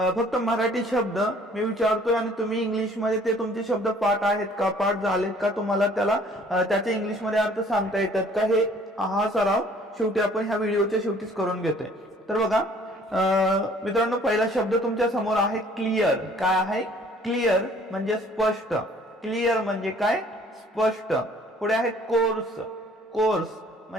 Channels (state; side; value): normal; both; correlation 0.56